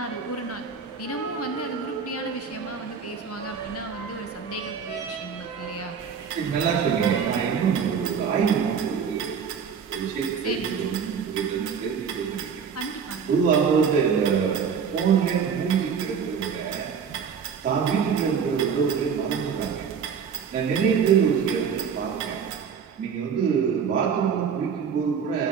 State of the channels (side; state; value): left; quieter; 6.7 dB